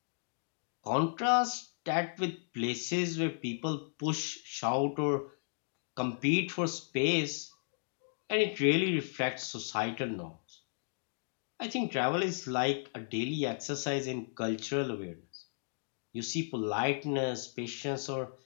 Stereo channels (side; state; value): right; silent; digital silence